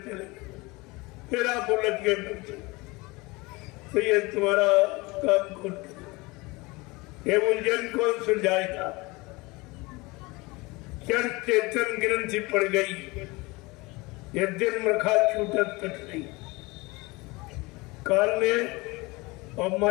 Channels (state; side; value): quieter; right; 23.9 dB